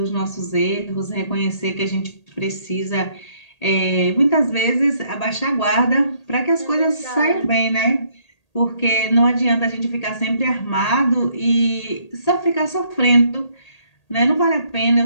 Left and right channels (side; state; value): right; late; 1.8 ms